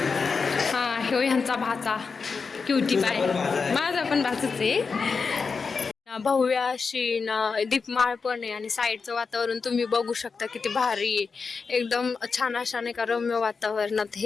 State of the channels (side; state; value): right; quieter; 5.0 dB